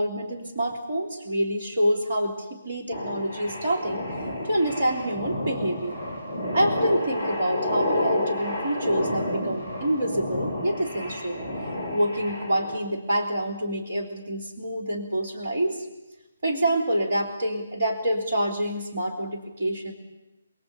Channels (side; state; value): both; inverted; correlation -0.83